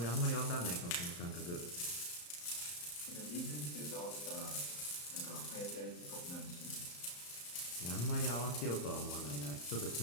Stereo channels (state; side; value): late; right; 34 ms